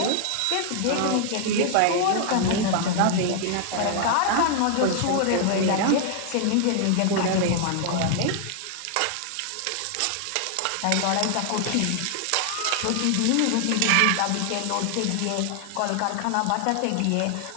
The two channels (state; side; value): different; both; correlation 0.00